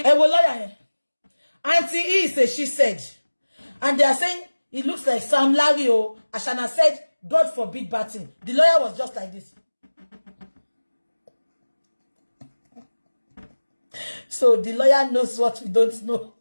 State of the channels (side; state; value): both; inverted; correlation -1.00